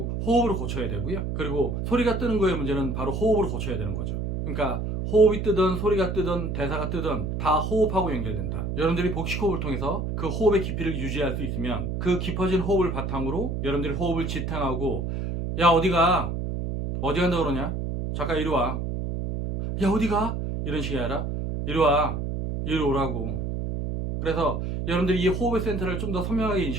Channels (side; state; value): right; noise; hum, 3 dB below the sound